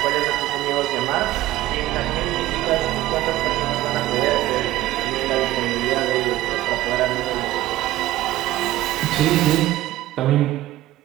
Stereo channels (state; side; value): quieter; left; 15.7 dB